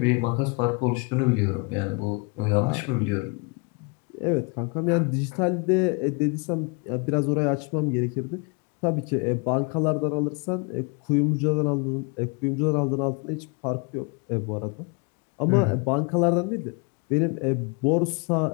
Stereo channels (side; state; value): right; quieter; 31.2 dB